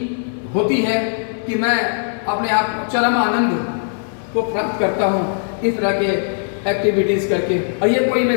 होती है कि मैं अपने आप चरम आनंद को प्राप्त करता हूँ इस तरह के एक्टिविटीज़ करके। और ये कोई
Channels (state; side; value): silent; right; 57 dB below the other